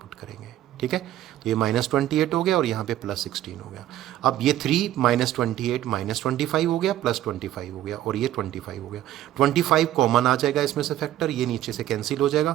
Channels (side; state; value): left; quieter; 13.1 dB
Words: करेंगे, ठीक है। तो ये -28 हो गया और यहाँ पे +16 हो गया। अब ये 3 - 28 -25 हो गया, +25 हो गया और ये 25 हो गया। 25 कॉमन आ जाएगा इसमें से फैक्टर, ये नीचे से कैंसिल हो